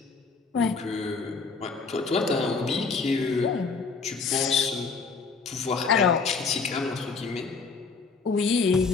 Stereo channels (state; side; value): quieter; right; 4.7 dB